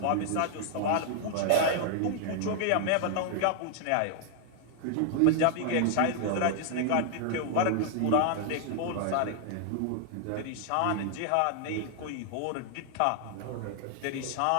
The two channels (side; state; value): both; different; correlation 0.00